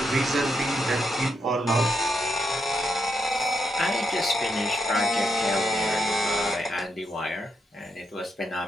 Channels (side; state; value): both; normal; correlation 0.81